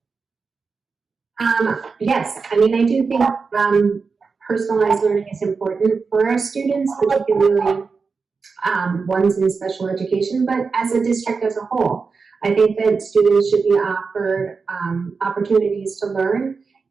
Yes, I mean, I do think personalized learning is important for our students, particularly ones in special education, but as a district as a whole. I think that students should be offered opportunities to learn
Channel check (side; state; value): left; quieter; 4.8 dB